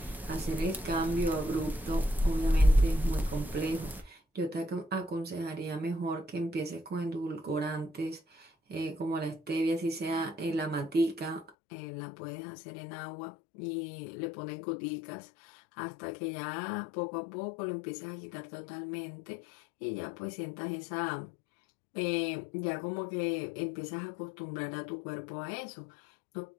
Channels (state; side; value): drops out; right; at 11.5 s